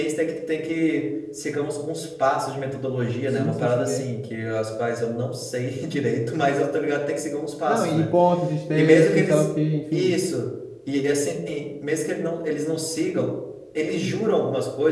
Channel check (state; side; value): identical; both; correlation 1.00